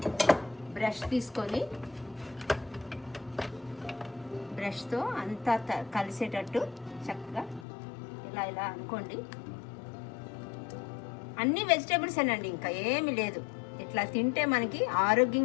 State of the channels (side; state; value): right; drops out; at 7.7 s